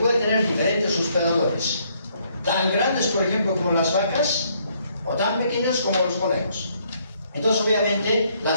tener diferentes hospedadores, tan grandes, por ejemplo, como las vacas, o tan pequeñas como los conejos. Entonces, obviamente,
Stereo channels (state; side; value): inverted; both; correlation -0.69